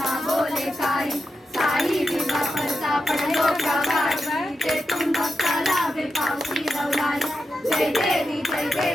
बोले काही साई विवा परता पडलो प्रवाही ते तुम भक्ताला वे पावसी रवलाई जय देवी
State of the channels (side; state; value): both; normal; correlation 0.88